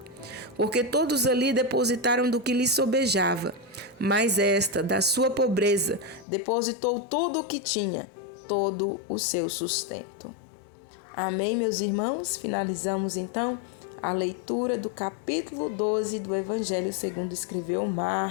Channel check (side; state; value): right; drops out; at 6.2 s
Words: Porque todos ali depositaram do que lhes sobejava, mas esta, da sua pobreza, depositou tudo o que tinha, todo o seu sustento. Amém, meus irmãos? Finalizamos então a leitura do capítulo 12 do Evangelho segundo escreveu